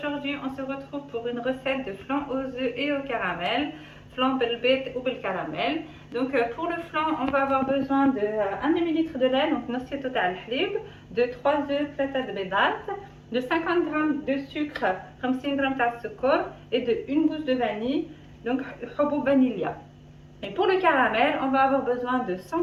on se retrouve pour une recette de flan aux œufs et au caramel. Flan belbet ou bel caramel. Donc pour le flan, on va avoir besoin de 1 demi-litre de lait, donc نص total halib, de 3 œufs, 3 بيضات, de 50 g de sucre, 50 g de sucre et de 1 gousse de vanille, donc حبوب vanilla. Et pour le caramel, on va avoir besoin de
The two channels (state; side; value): identical; both; correlation 1.00